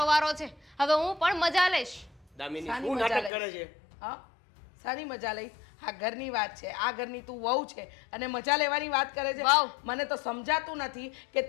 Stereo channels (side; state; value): right; drops out; at 3.3 s